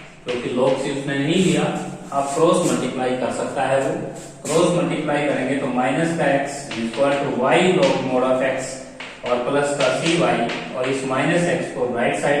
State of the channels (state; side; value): identical; both; correlation 1.00